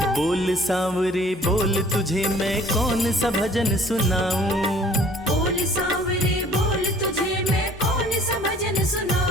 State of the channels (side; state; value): both; normal; correlation 0.53